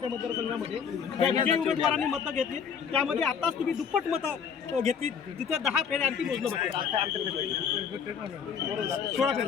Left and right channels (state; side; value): quieter; right; 7.1 dB